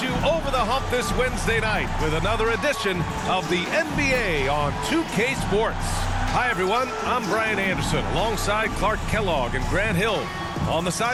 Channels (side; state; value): both; identical; correlation 1.00